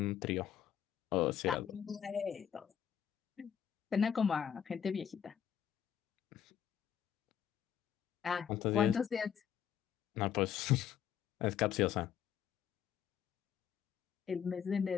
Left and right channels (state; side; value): quieter; right; 8.9 dB